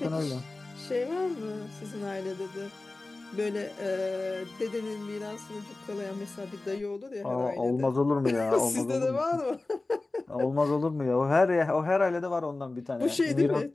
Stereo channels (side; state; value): right; quieter; 3.2 dB